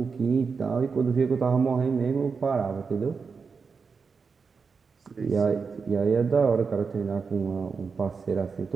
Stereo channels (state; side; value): quieter; left; 5.3 dB